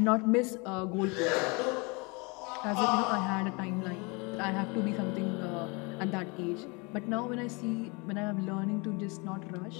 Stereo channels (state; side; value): quieter; right; 29.3 dB